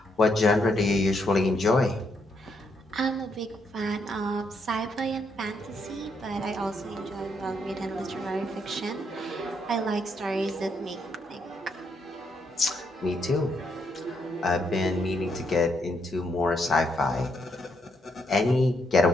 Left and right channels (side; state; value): both; normal; correlation 0.76